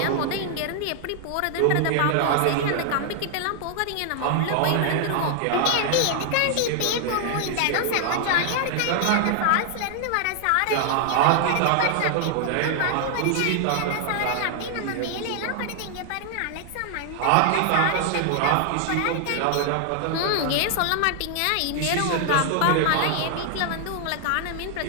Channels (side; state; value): both; different; correlation 0.00